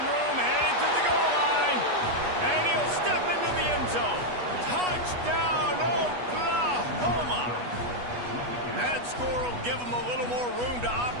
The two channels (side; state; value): left; late; 8.2 ms